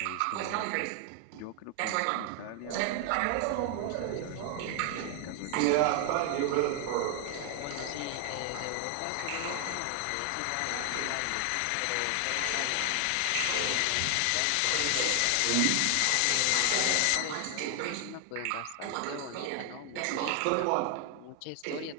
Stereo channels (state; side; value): different; both; correlation 0.00